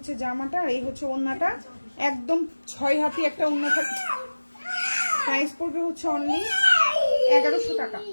জামাটা, আর এই হচ্ছে ওড়নাটা, একদম 6 হাতি একটা ওড়না থাকে। প্রাইস পড়বে হচ্ছে অনলি 1100 টাকা।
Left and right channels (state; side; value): inverted; both; correlation -1.00